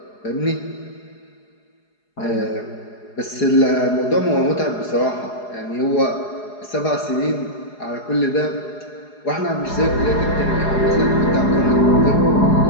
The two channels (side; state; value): right; late; 4.8 ms